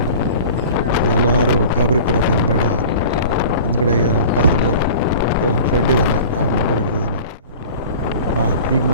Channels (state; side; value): inverted; both; correlation -0.40